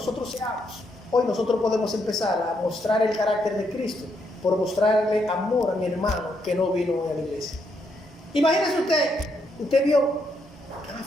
seamos. Hoy nosotros podemos empezar a mostrar el carácter de Cristo por mostrarle amor a mi hermano que no vino a la iglesia. Imagínese usted vio que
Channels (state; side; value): normal; both; correlation 0.77